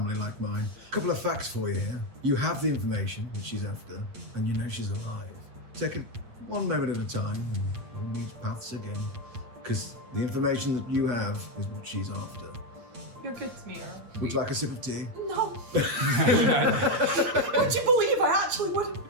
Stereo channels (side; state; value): left; late; 8.6 ms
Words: like mine. A couple of facts for you here. You have the information that she's after, and you know she's alive. Take it one moment at a time, and we'll meet paths again. Because the information that you have is what she's after. You're good to me, Earl. Would you like a sip of tea? No. Would you believe I actually would?